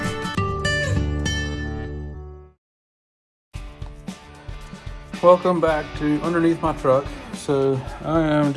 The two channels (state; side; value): identical; both; correlation 1.00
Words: Welcome back to underneath my truck. So I am